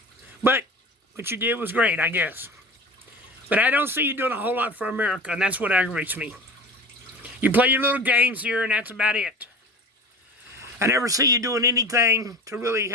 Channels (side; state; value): both; normal; correlation 0.35